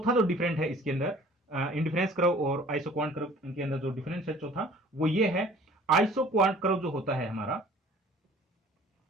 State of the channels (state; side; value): normal; both; correlation 0.50